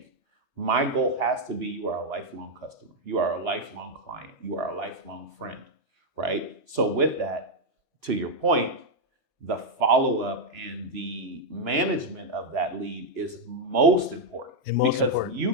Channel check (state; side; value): normal; both; correlation -0.01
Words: my goal has to be you are a lifelong customer. You are a lifelong client. You are a lifelong friend, right? So with that, to your point, the follow-up and the management of that lead is most important because you